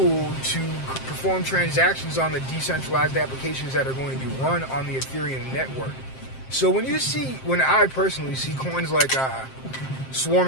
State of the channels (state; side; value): late; right; 7.6 ms